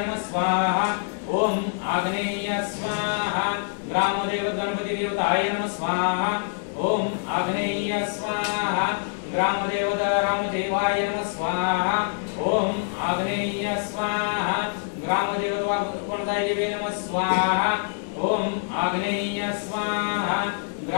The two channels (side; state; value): right; silent; digital silence